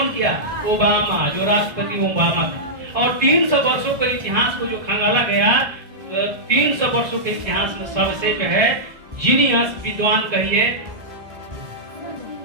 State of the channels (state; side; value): late; left; 1.6 ms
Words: किया? ओबामा, जो राष्ट्रपति ओबामा था। और 300 वर्षों के इतिहास को जो खंगाला गया, 300 वर्षों के इतिहास में सबसे जो है जीनियस विद्वान कहिए,